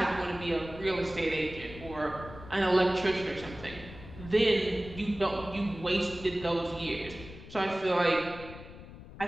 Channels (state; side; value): noise; left; rumble, 15 dB below the sound